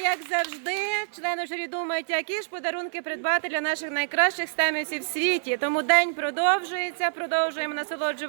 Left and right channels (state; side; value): silent; left; 61 dB below the other